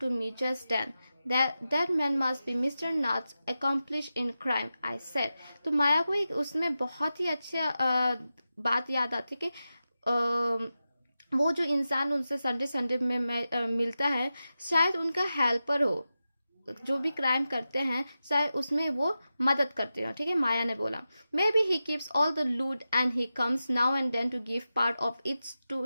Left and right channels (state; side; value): inverted; both; correlation -0.92